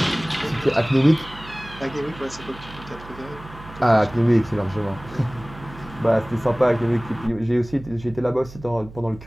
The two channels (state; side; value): noise; right; hum, 17 dB below the sound